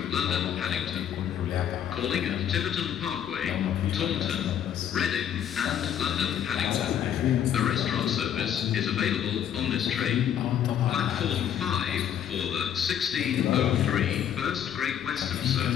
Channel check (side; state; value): right; quieter; 9.6 dB